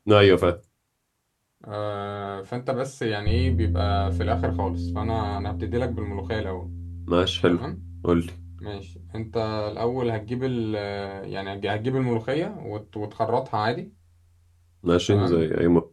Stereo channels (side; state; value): both; identical; correlation 1.00